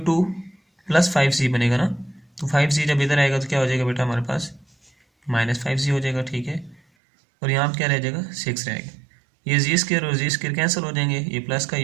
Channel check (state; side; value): drops out; left; at 6.8 s